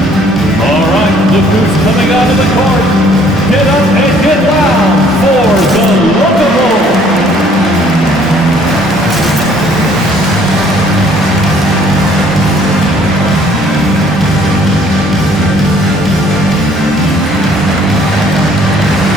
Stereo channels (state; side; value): normal; both; correlation 0.60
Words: All right, look who's coming out of the court. Get up and get loud for the Locomotive.